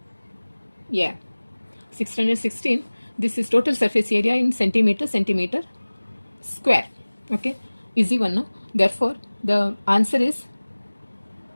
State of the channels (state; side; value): inverted; both; correlation -1.00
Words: Yeah, 616. This is total surface area in centimeter square. Okay, easy one, no? Therefore, the answer is